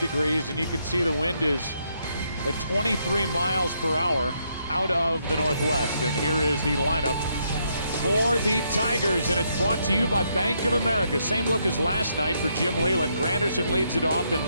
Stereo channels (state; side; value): inverted; both; correlation -0.76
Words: and you can see the wind is at 23 miles per hour out of the northwest. And here is the lineup for the Tigers, and it's brought to you by Bank of America. Same look as last night for Jim Leyland. Granderson leads it off, then